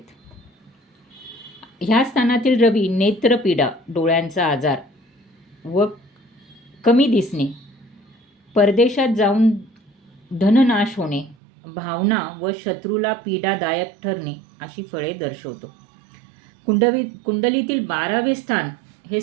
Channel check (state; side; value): drops out; left; at 11.4 s